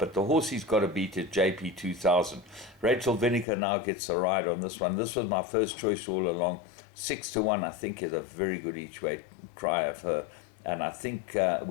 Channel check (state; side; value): drops out; right; at 3.5 s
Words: the horse he's got to beat is JP 2000. Rachel Vinegar now gets a ride on this one. This was my first choice all along. 6-1, I think, is a very good each-way cry of her. And I think